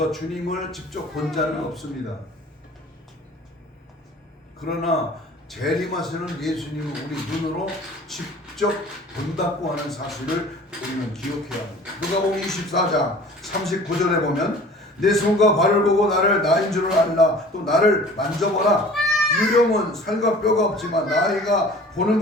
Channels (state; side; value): normal; both; correlation 0.45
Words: 주님을 직접 본 자는 없습니다. 그러나 재림하시는 예수님을 우리 눈으로 직접 본다고 하는 사실을 우리는 기억해야 합니다. 누가복음 24장 39절에 보면 내 손과 발을 보고 나를 나인 줄을 알라. 또 나를 만져보라. 유령은 살과 뼈가 없지만 나이가 보는